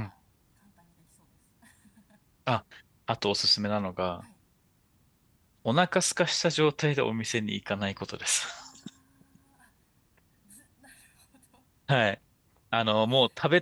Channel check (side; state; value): both; identical; correlation 1.00